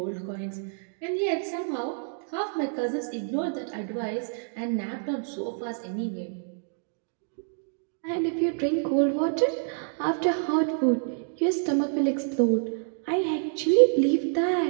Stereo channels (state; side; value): silent; left; digital silence